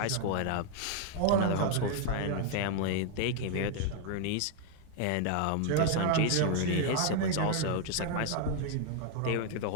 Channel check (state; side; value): different; both; correlation 0.00